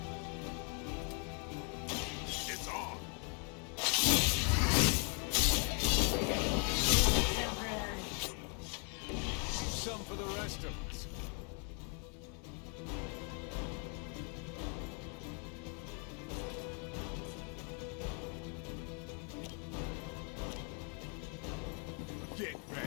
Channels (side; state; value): right; quieter; 38.5 dB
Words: It's on. Some for the rest of us. Get